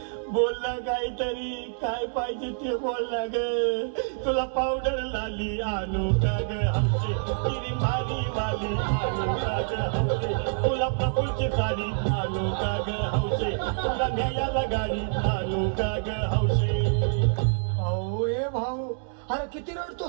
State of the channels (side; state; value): left; silent; digital silence